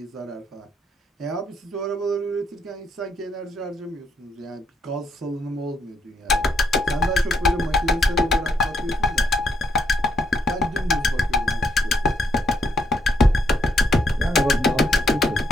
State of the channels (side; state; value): both; normal; correlation 0.75